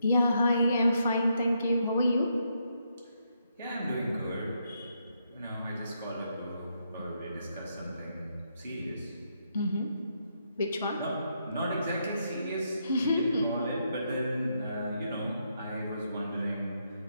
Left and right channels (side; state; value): both; inverted; correlation -0.78